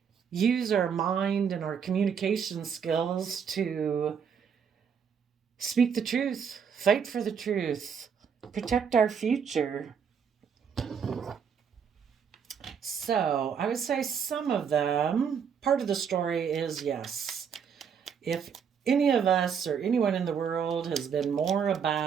use our mind and our communication skills to speak the truth, fight for the truth, protect our future. So I would say some of them, part of the story is yes, if any of us or anyone in the world has been more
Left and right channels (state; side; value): quieter; left; 7.0 dB